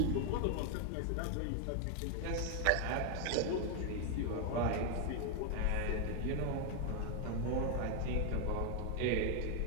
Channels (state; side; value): different; both; correlation 0.00